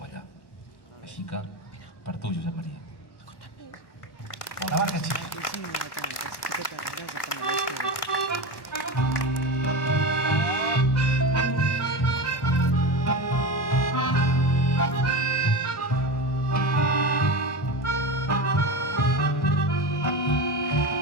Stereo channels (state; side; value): late; right; 1.1 ms